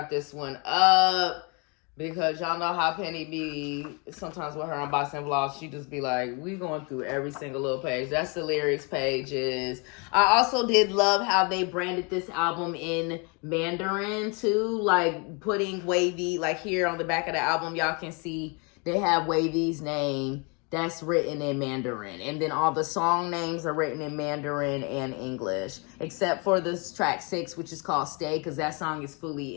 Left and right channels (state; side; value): quieter; right; 32.3 dB